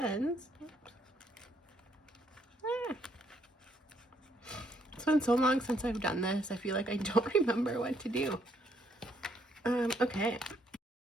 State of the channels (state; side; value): normal; both; correlation 0.70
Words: It's been so long since I've done this. I feel like I don't remember what to do. Okay.